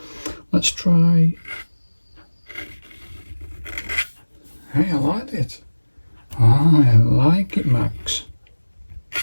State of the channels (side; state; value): both; inverted; correlation -1.00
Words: Let's try. Hey, I like it. I like it, Max.